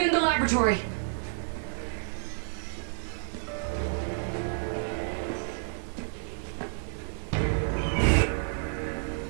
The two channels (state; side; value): silent; left; digital silence